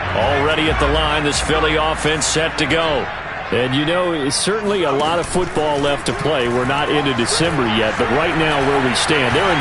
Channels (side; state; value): both; identical; correlation 1.00